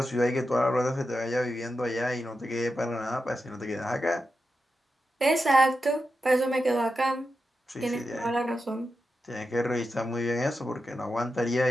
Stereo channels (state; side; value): normal; both; correlation 0.89